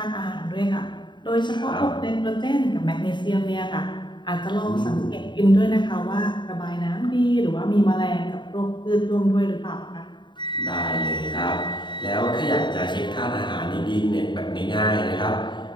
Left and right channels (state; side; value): late; right; 0.22 ms